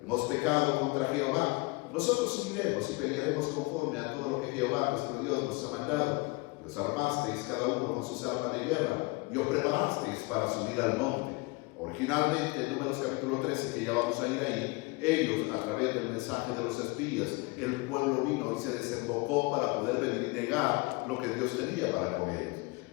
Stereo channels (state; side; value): quieter; right; 25.4 dB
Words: Hemos pecado contra Jehová. Nosotros subiremos y pelearemos conforme a todo lo que Jehová nuestro Dios nos ha mandado. Y os armasteis cada uno con sus armas de guerra y os preparasteis para subir al monte. Originalmente, en Números capítulo 13, que ya vamos a ir ahí, ellos, a través del mensaje de los espías, el pueblo vino y se desembocó para poder venir y negar lo que Dios tenía para con ellos.